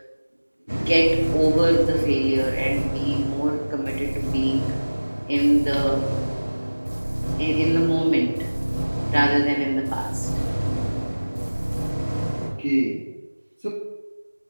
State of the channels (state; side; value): inverted; both; correlation -1.00